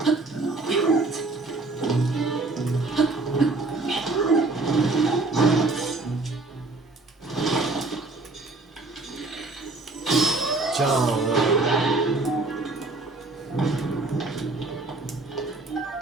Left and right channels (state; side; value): quieter; left; 3.3 dB